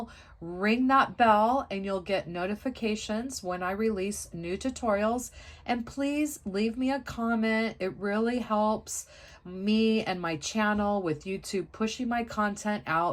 ring that bell, and you'll get notifications when I release new tutorials. And please leave me a comment. It really helps me and my channel with YouTube pushing my content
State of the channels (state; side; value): identical; both; correlation 1.00